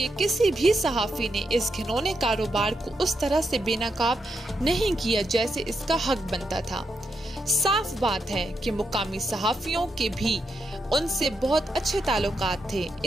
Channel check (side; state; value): both; normal; correlation 0.83